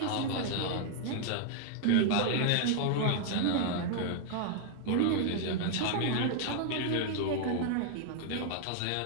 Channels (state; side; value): different; both; correlation -0.01